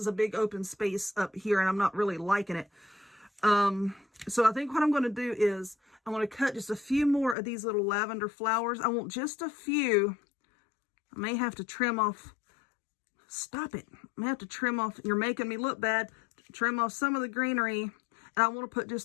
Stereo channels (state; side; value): drops out; right; at 7.4 s